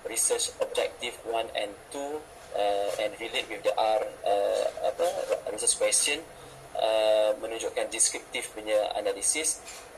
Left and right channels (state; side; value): identical; both; correlation 1.00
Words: research objective 1 and 2 and relate with the research question, menunjukkan deskriptif punya analisis,